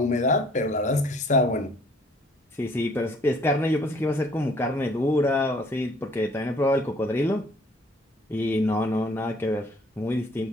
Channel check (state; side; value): normal; both; correlation 0.59